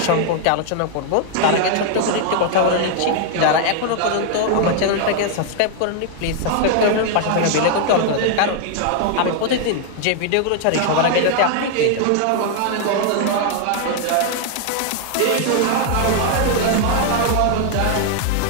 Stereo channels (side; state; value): both; different; correlation 0.00